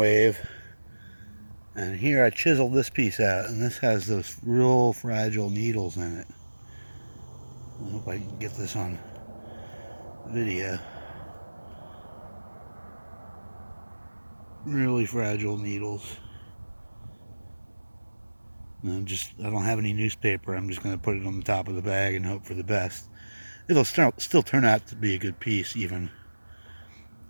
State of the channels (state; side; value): inverted; both; correlation -1.00